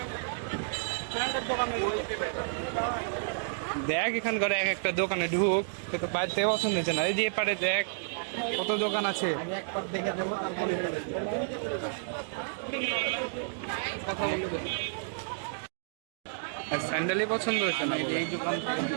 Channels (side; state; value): left; silent; digital silence